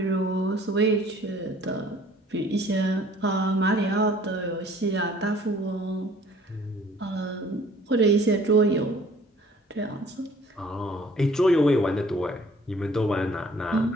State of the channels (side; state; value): both; normal; correlation 0.54